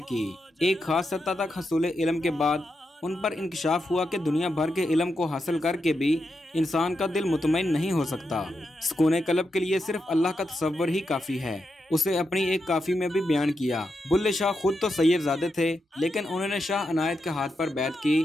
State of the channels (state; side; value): normal; both; correlation 0.86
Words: की। एक खास सतह तक हसूल इल्म के बाद उन पर इंकशाफ हुआ कि दुनिया भर के इल्म को हासिल करके भी इंसान का दिल मुतमईन नहीं हो सकता। सुकून कल्ब के लिए सिर्फ अल्लाह का तसव्वुर ही काफ़ी है। उसे अपनी एक काफी में भी बयान किया। बुल्ले शाह खुद तो सैयदजादे थे, लेकिन उन्होंने शाह अनायत के हाथ पर बैत की